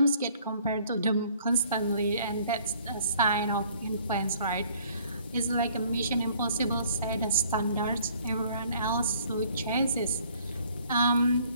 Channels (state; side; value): inverted; both; correlation -0.59